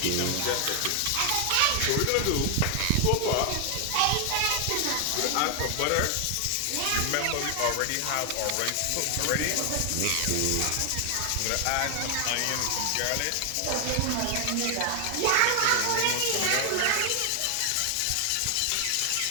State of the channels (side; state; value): both; different; correlation 0.00